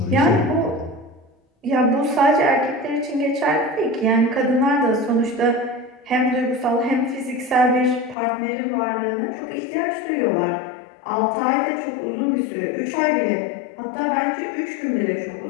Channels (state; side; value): drops out; right; at 8.2 s